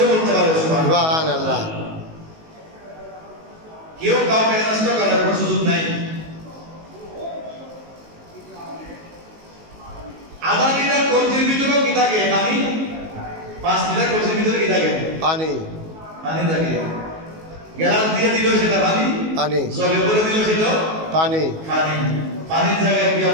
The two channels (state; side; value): late; left; 19 ms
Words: বলতে পারে। সুবহানাল্লাহ। কেউ কাউকে নষ্ট করার কোনো সুযোগ নাই। আধা লিটার কলসির ভিতরেও কি থাকে? পানি। 5 লিটার কলসির ভিতরে কি থাকে? পানি। পানি থাকে। গ্লাস দিয়ে দিল সেটা পানি, পানি। জগে ভরে দিল সেটা পানি। পানি। পানির জায়গায় কি